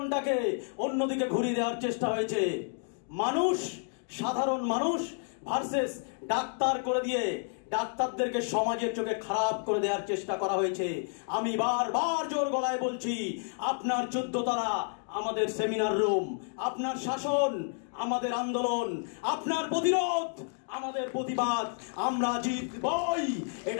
অন্যদিকে ঘুরিয়ে দেওয়ার চেষ্টা হয়েছে। মানুষ, সাধারণ মানুষ ভার্সেস ডাক্তার করে দিয়ে ডাক্তারদেরকে সমাজের চোখে খারাপ করে দেওয়ার চেষ্টা করা হয়েছে। আমি বারবার জোর গলায় বলছি, আপনার 14 তলা আমাদের সেমিনার রুম, আপনার শাসন আমাদের আন্দোলন, আপনার প্রতিরোধ আমাদের প্রতিবাদ। আমরা জিতবই,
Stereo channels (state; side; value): silent; right; 57 dB below the other